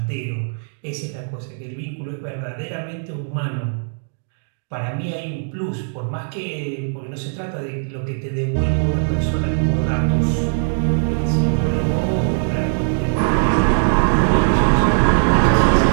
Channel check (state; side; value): silent; left; digital silence